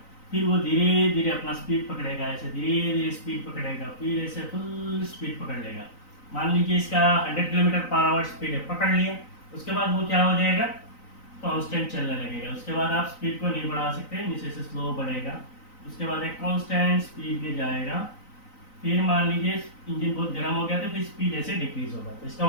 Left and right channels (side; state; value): right; late; 3.9 ms